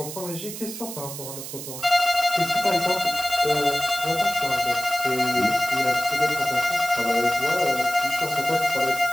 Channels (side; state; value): right; noise; hiss, 9 dB below the sound